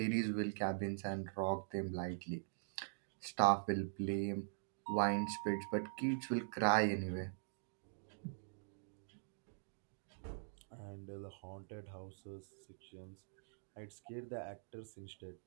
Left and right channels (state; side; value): silent; left; digital silence